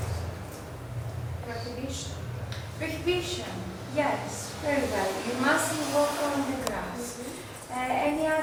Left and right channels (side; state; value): both; identical; correlation 1.00